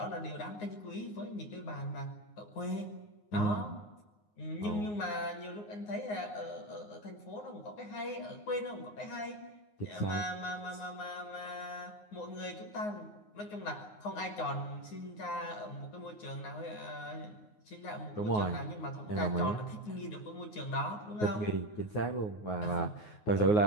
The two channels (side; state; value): right; late; 9.6 ms